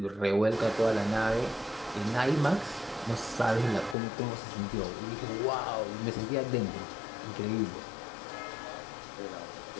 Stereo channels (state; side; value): drops out; right; at 4.0 s